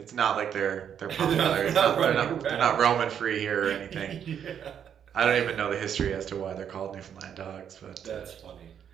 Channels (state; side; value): quieter; left; 8.6 dB